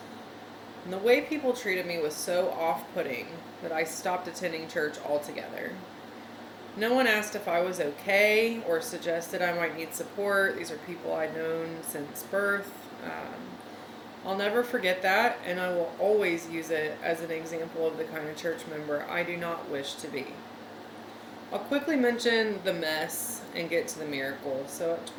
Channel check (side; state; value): both; identical; correlation 1.00